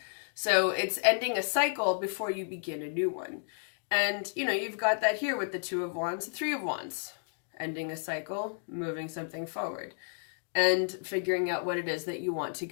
So it's ending a cycle before you begin a new one. And, you know, you've got that here with the 2 of Wands, the 3 of Wands. Ending a cycle, moving something forward, and figuring out what it is that you want to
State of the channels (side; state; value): right; silent; digital silence